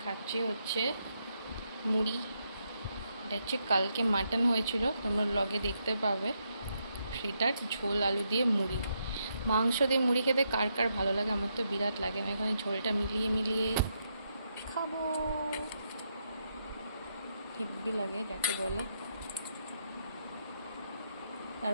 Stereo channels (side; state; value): both; inverted; correlation -0.80